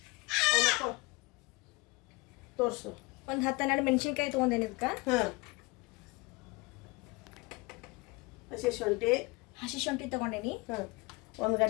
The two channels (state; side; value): quieter; right; 24.7 dB